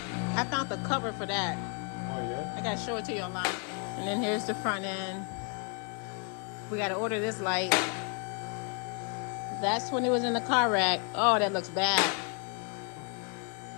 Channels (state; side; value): quieter; right; 37.4 dB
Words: I found the cover for that. Oh, yeah? I gotta show it to you online. And then here's the front end. We gotta order this light. That's when it was in the car rack. Oh, that looks bad.